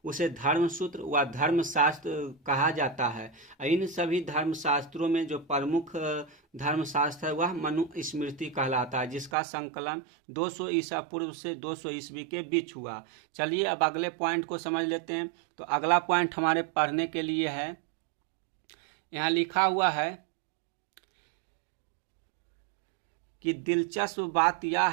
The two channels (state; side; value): drops out; left; at 9.3 s